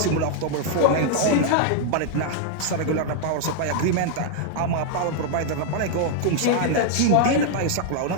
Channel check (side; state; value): both; different; correlation 0.00